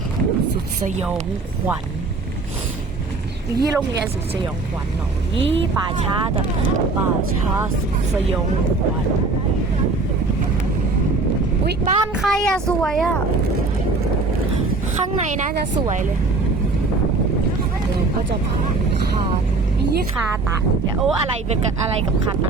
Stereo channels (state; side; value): quieter; left; 3.6 dB